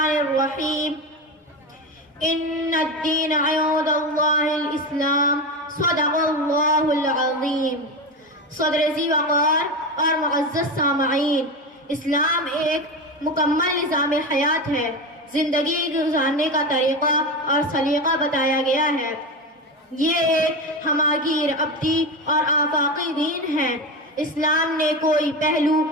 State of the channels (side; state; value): both; normal; correlation 0.20